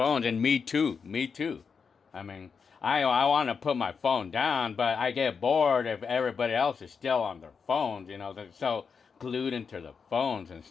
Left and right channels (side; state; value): right; quieter; 5.8 dB